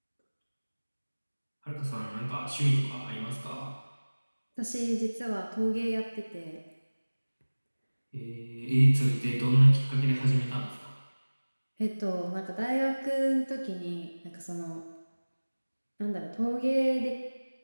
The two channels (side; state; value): both; inverted; correlation -1.00